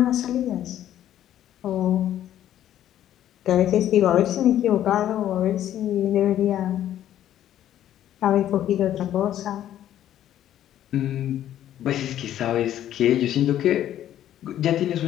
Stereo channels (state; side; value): quieter; right; 11.7 dB